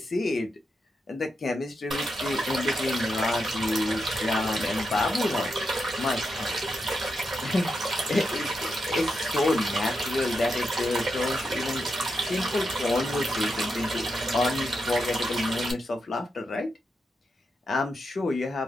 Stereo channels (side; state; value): both; normal; correlation 0.85